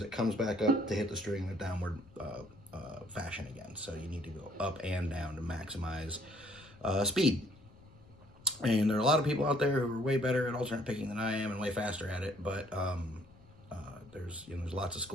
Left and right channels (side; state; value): left; noise; rumble, 25 dB below the sound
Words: it comes back up to hit the string in a downward fashion again. So you need to go up and down to maximize speed. And there are a lot of people out there who are way better at alternate picking than I am and way faster at it, but there's lots of